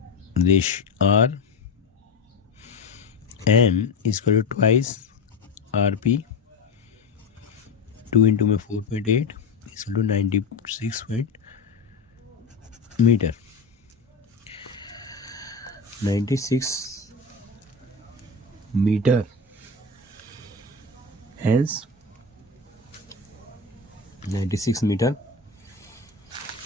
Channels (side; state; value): right; quieter; 4.3 dB